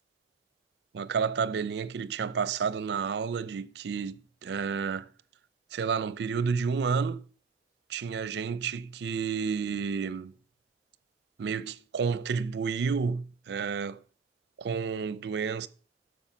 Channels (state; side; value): quieter; left; 5.5 dB